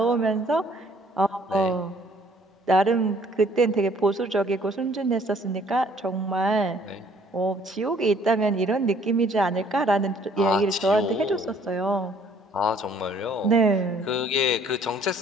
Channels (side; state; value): both; normal; correlation 0.59